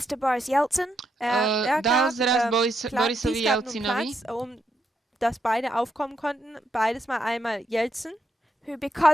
to Boris Yeltsin. Dal zraz Borisovi Jelcinovi, dass beide aufkommen konnten, beides mal einmal Jelzin, who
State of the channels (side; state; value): both; normal; correlation 0.80